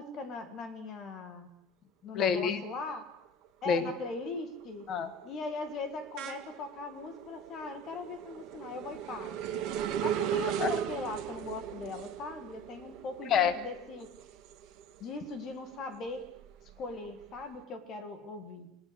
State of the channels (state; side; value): normal; both; correlation 0.39